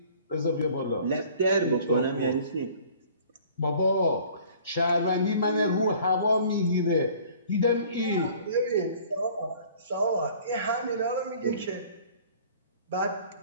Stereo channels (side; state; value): both; inverted; correlation -0.51